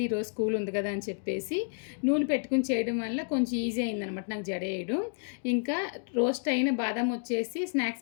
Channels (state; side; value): silent; right; 58 dB below the other